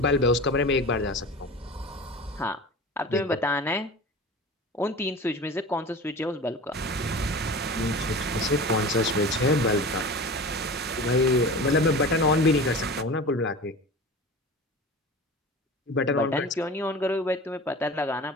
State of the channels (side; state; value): both; normal; correlation 0.35